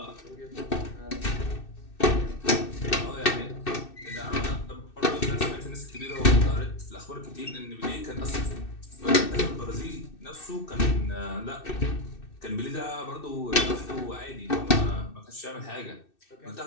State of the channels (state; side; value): late; right; 2.6 ms